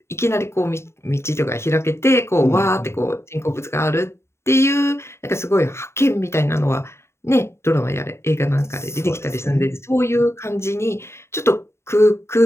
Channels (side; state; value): right; late; 0.13 ms